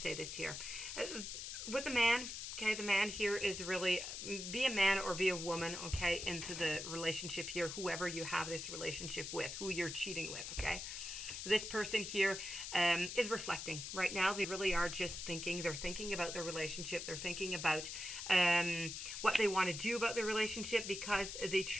this here? With the man, okay, the man here is really, be a man or be a woman, okay, into the relationship here, whoever you have this relationship with, who you're cheating with, okay? This person here is reflecting right now. They really are just thinking. They're thinking about their relationship. They're thinking about what they want to do about the relationship, because they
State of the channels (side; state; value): left; noise; hiss, 6 dB below the sound